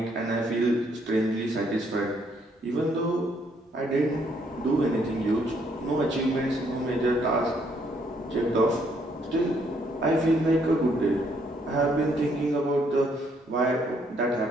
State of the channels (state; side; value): normal; both; correlation 0.70